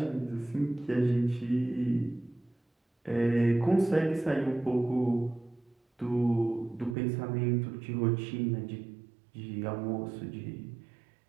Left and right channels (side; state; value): left; drops out; at 7.0 s